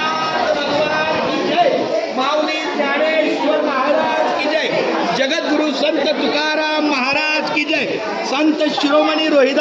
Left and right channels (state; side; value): identical; both; correlation 1.00